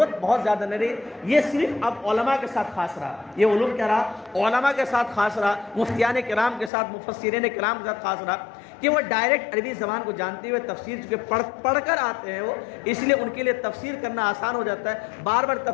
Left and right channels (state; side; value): drops out; right; at 6.7 s